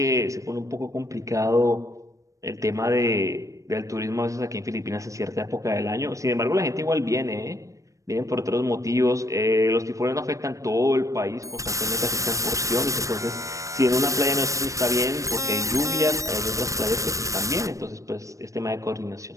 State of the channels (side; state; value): left; late; 0.16 ms